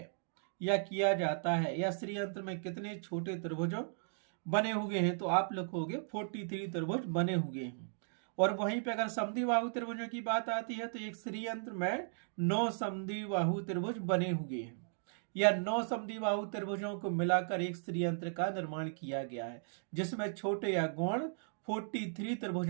या किया जाता है, या श्रीयंत्र में कितने छोटे त्रिभुजों बने हुए हैं, तो आप लिखोगे 43 त्रिभुज बने हुए हैं। और वहीं पे अगर समद्विबाहु त्रिभुजों की बात आती है तो एक श्रीयंत्र में 9 समद्विबाहु त्रिभुज बने हुए हैं, या 9 समद्विबाहु त्रिभुजों को मिलाकर एक श्रीयंत्र का निर्माण किया गया है, जिसमें छोटे या गौण 43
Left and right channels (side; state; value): left; silent; digital silence